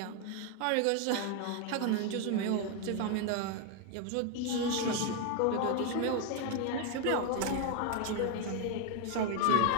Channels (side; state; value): both; different; correlation 0.01